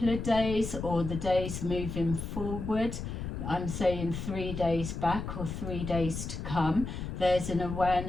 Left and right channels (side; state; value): left; noise; rumble, 6 dB below the sound